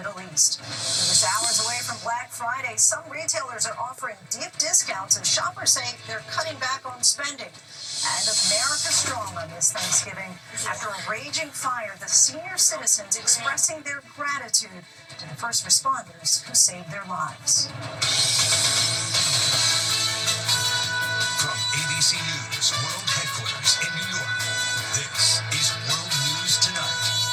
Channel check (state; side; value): identical; both; correlation 1.00